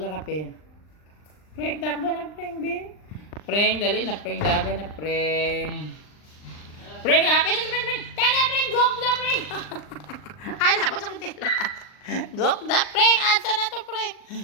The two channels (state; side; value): late; right; 39 ms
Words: kape. Preng, takbo na, preng, bin. Preng, dali na, preng, daga na, preng. Preng, happy na si preng, preng. Tana, preng, gok na, preng. Ay, napot sa kutila. Gok na, preng. Asa na to, preng.